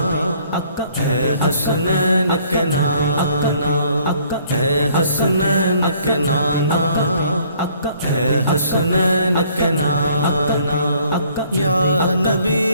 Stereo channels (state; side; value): inverted; both; correlation -0.60